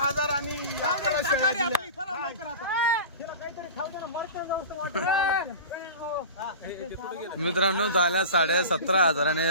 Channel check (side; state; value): both; inverted; correlation -0.33